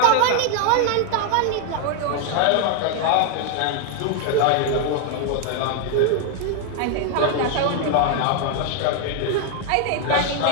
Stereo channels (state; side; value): different; both; correlation 0.01